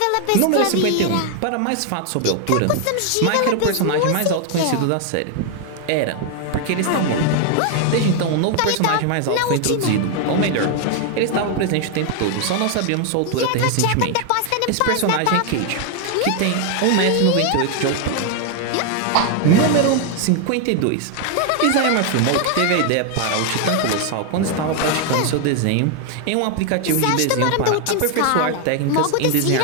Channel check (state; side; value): different; both; correlation 0.00